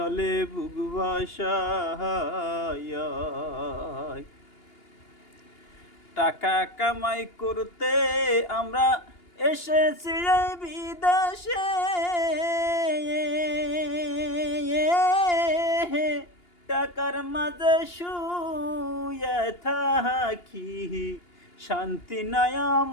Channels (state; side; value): late; right; 2.8 ms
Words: বুক ভাসায়। টাকা কামাই করতে আমরা এসেছি এই বিদেশে, টাকার মাঝে শুয়ে থাকি, শান্তি নাই